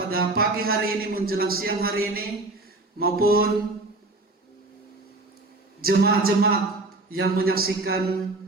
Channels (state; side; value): quieter; left; 3.0 dB